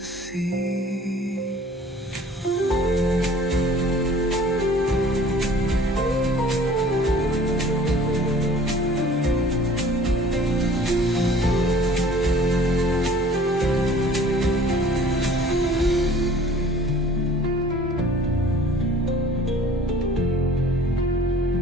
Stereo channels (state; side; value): normal; both; correlation 0.50